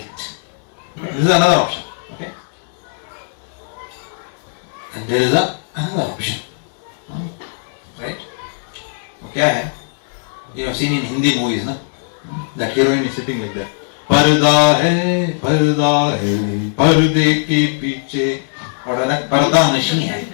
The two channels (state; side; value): silent; right; 67 dB below the other